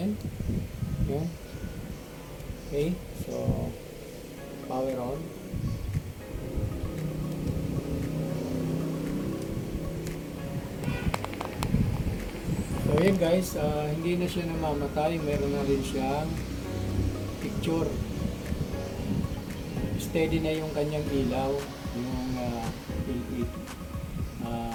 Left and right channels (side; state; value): both; identical; correlation 1.00